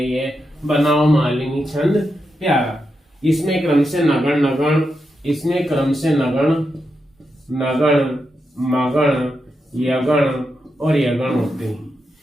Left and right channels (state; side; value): normal; both; correlation 0.86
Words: बनाओ मालिनी छंद प्यारा। इसमें क्रम से नगण नगण मगण यगण और यगण होते हैं।